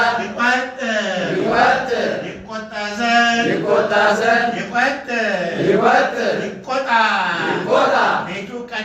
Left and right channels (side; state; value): both; identical; correlation 1.00